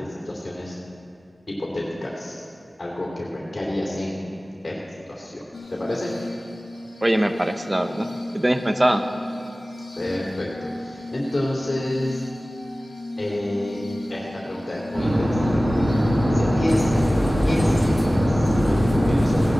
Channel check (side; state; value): both; normal; correlation 0.97